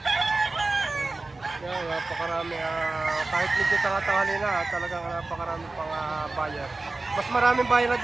Yan, napakarami. Kahit medyo tangatangali na, talagang napakarami pang buyer. Mas maraming buyer na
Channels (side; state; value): left; quieter; 3.3 dB